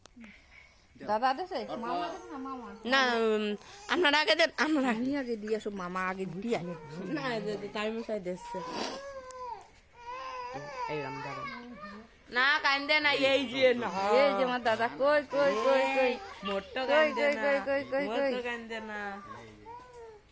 দাদা দেছে মামা দেছে না মামা না আপনারা আগে দেন আমরা আমি আগে দিয়ে আসো মামা আগে দিয়ে না টাইম চাই দিচ্ছে এই রাম দাদা না কান্দে না এই যে না এই যে আমার দাদা কই মোট্টো কই কান্দে না কই মোট্টো কান্দে না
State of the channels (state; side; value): identical; both; correlation 1.00